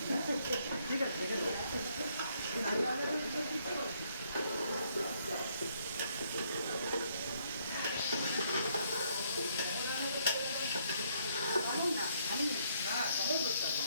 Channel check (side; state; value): both; inverted; correlation -0.70